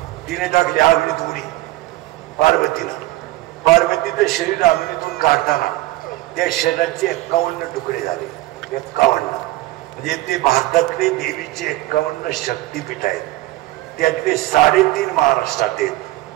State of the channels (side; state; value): left; quieter; 17.7 dB